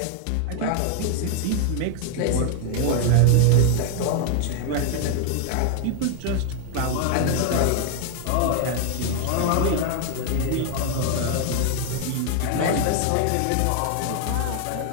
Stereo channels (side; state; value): both; different; correlation 0.00